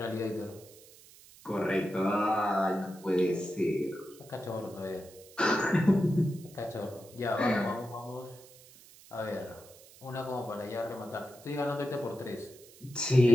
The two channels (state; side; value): noise; right; hiss, 22 dB below the sound